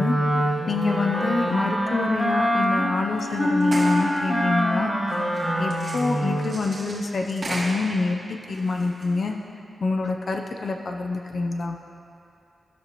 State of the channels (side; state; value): both; normal; correlation 0.91